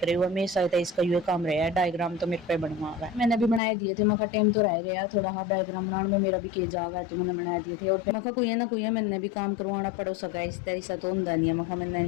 हुआ हमेशा इसका ये काम रहा है, डायग्राम तो मेरे पे बनवा हुआ है। मैंने भी बनाए दिए थे, मखा टेम तो रह गया थोड़ा हाथ डायग्राम बनाने में, मेरा भी के जागा है तो मैंने बना दिए थे। और फिर मखा कोई है ना कोई है मैंने भी काम करवाना पड़ो सका, इस तरह से तो होंदा नहीं है, मखा मैंने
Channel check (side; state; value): right; drops out; at 3.6 s